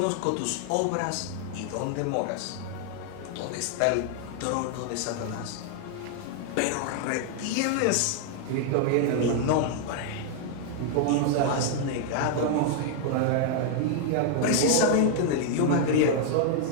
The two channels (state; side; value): different; both; correlation 0.00